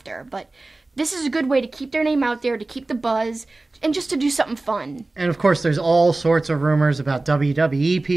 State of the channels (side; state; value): left; quieter; 3.1 dB